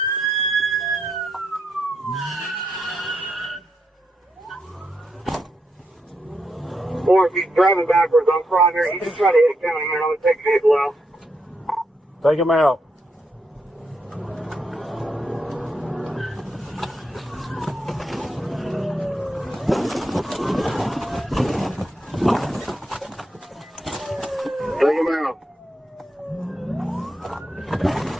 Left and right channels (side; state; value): both; normal; correlation 0.82